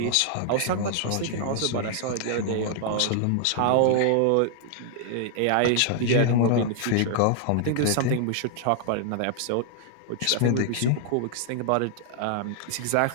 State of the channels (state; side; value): different; both; correlation -0.01